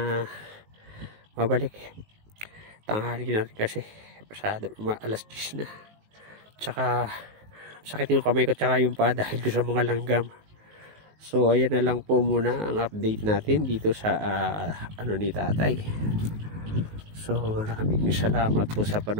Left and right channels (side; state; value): left; late; 19 ms